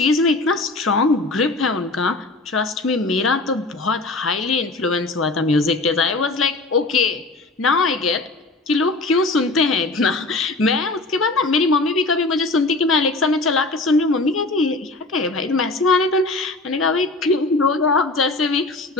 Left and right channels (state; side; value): quieter; right; 3.2 dB